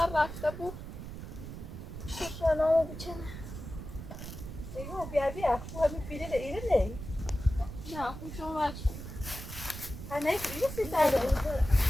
رفته بود شنامو بچنه دیگه بیا خو همین پیله ایره نه نه خوشم وقت نه پیله سی داره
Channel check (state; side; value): noise; right; rumble, 10 dB below the sound